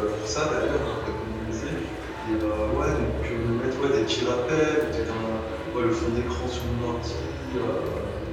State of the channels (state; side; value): identical; both; correlation 1.00